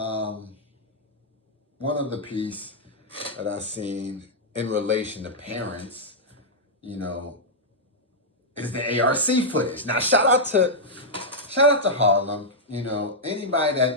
of the piece that I seen in relation to parents, you know, is the ARC footage. Now, shout out to Harlem. You know, anybody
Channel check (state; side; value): normal; both; correlation -0.07